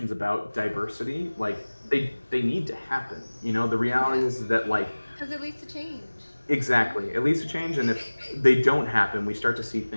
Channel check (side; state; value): both; inverted; correlation -1.00